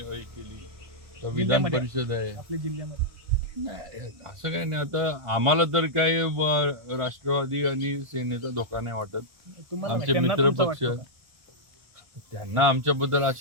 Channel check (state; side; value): late; left; 1.4 ms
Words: केली, तर विधान परिषद आहे आपल्या जिल्ह्यामध्ये नाही, असं काही नाही. आता आम्हाला तर काय राष्ट्रवादी आणि सेनेचा धोका नाही वाटत. आमचे मित्र पक्ष, त्यांना आमच्याबद्दल